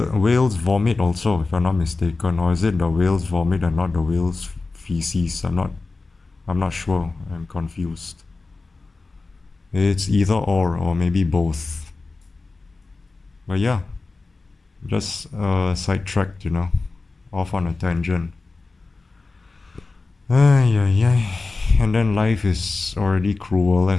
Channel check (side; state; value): right; quieter; 3.7 dB